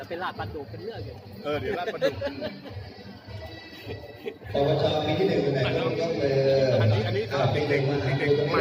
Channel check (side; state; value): both; identical; correlation 1.00